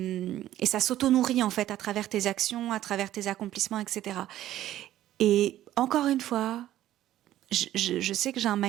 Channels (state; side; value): quieter; left; 13.2 dB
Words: ça s'auto-nourrit en fait à travers tes actions, à travers tes accomplissements, etc. Et encore une fois, je sais que j'ai un